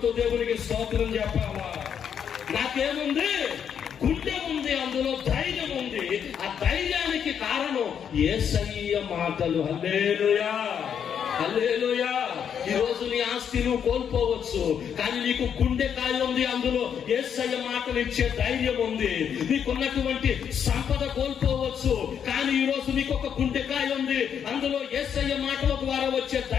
దేవునికి స్తోత్రం చెప్పాలా? నాకేముంది? గుండె ఉంది, అందులో ధైర్యం ఉంది. ఆ ధైర్యానికి కారణం యేసయ్య మాటలు. హల్లెలూయా. హల్లెలూయా. ఈ రోజు నీ ఆస్తి నువ్వు కోల్పోవచ్చు, కానీ నీకు గుండెకాయ ఉంది, అందులో యేసయ్య మాటలు ఇచ్చే ధైర్యం ఉంది. నీకున్నటువంటి సంపద కోల్పోవచ్చు, కానీ ఈ రోజు నీకు ఒక గుండెకాయ ఉంది, అందులో యేసయ్య మాటల ద్వారా వచ్చే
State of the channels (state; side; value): quieter; right; 8.1 dB